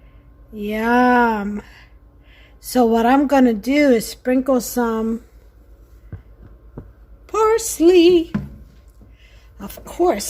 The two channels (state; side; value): identical; both; correlation 1.00